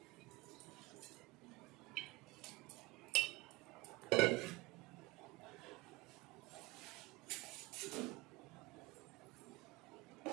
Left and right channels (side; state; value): left; quieter; 21.4 dB